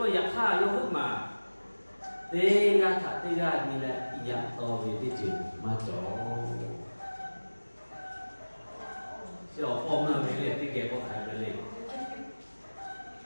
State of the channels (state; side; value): inverted; both; correlation -1.00